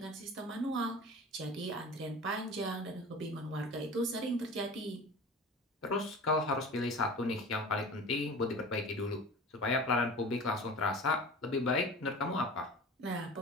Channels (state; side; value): normal; both; correlation 0.37